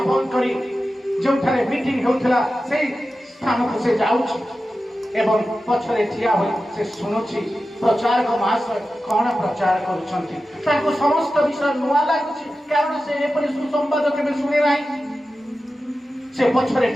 बंद करी जोठारे मीटिंग होउथला से स्थान को से जाउछि एवं पछरे ठिया होई से सुनुछि प्रचारक महाशय कौन प्रचार करुछंती ताको समस्त विषय नुआ लागुछि कारण से एपरि सुसंवाद केबे सुने नाही से पछरे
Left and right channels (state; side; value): normal; both; correlation 0.93